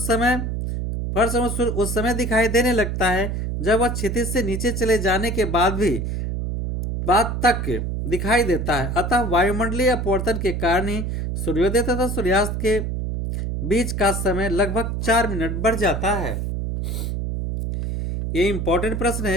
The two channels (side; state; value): right; noise; hum, 2 dB below the sound